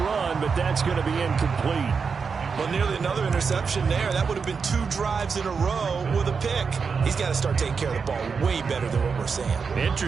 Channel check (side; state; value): left; quieter; 5.5 dB